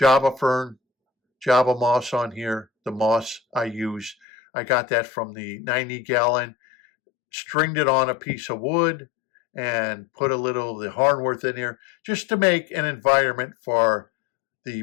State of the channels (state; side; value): drops out; right; at 4.2 s